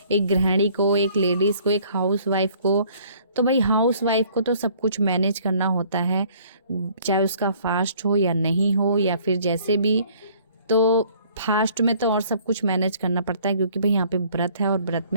एक गृहिणी को, एक लेडीज़ को, एक हाउस वाइफ को, तो भाई हाउस वाइफ को तो सब कुछ मैनेज करना होता है, चाहे उसका फास्ट हो या नहीं हो, या फिर जैसे भी। तो फास्ट में तो और सब कुछ मैनेज करना पड़ता है, क्योंकि भाई यहाँ पे व्रत है और व्रत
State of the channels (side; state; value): both; inverted; correlation -0.57